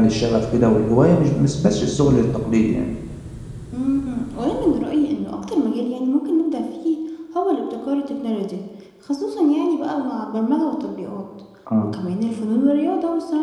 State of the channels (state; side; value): identical; both; correlation 1.00